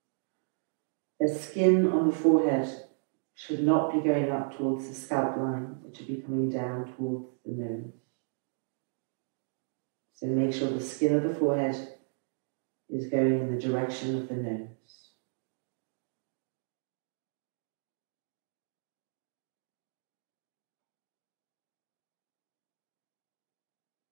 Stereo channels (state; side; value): silent; left; digital silence